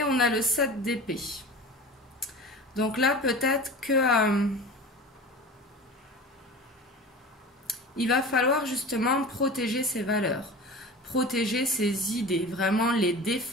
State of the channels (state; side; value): normal; both; correlation 0.34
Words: on a le 7 d'épée. Donc là, peut-être que il va falloir justement protéger ses valeurs, protéger ses idées, vraiment les